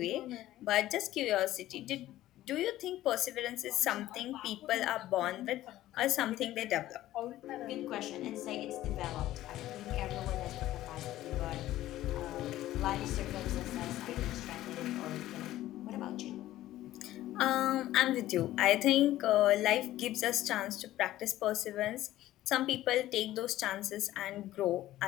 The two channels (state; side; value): quieter; right; 14.6 dB